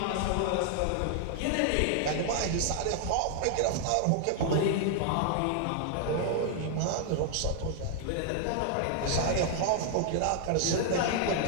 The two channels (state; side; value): different; both; correlation 0.00